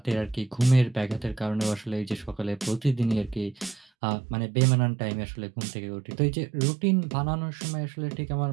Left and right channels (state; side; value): drops out; left; at 3.9 s